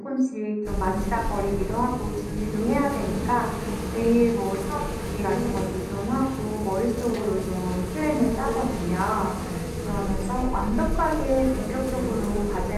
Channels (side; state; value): both; identical; correlation 1.00